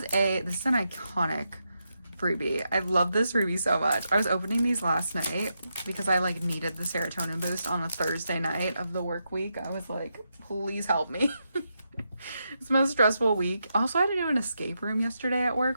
an iconic freebie. I love this freebie so much. I was opening these last night because I like needed the serotonin boost on a Thursday night of the work week. I was like, please help me. It's the most stressful week. Also, I had to do an escape room yesterday at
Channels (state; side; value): inverted; both; correlation -0.84